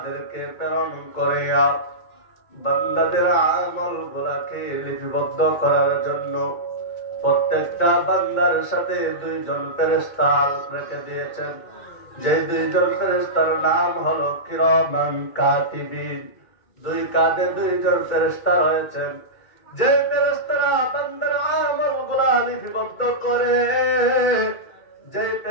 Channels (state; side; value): late; right; 2.2 ms